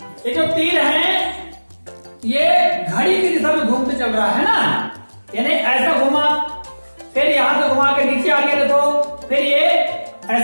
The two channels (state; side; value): inverted; both; correlation -1.00